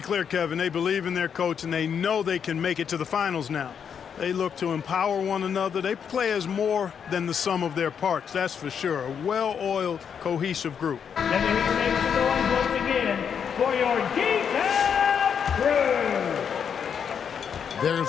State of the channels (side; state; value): right; quieter; 7.4 dB